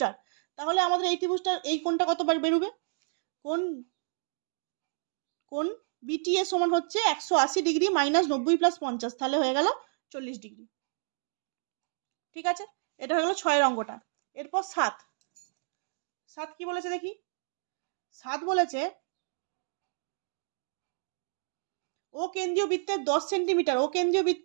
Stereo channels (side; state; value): left; silent; digital silence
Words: তাহলে আমাদের এই ত্রিভুজটার এই কোণটা কত বেরোবে, কোণ বিটিএ সমান হচ্ছে 180 ডিগ্রি মাইনাস 90 প্লাস 50, তাহলে হয়ে গেল 40 ডিগ্রি। ঠিক আছে, এটা হয়ে গেল 6 অঙ্কটা। এরপর 7 কি বলেছে দেখি। 7 বলেছে ও কেন্দ্রীয় বৃত্তের 10 সেন্টিমিটার, ও কেন্দ্রীয়